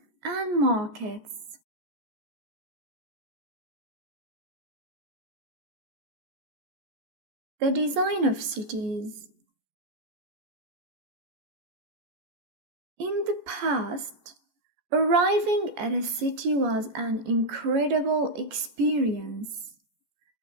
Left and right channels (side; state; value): left; late; 14 ms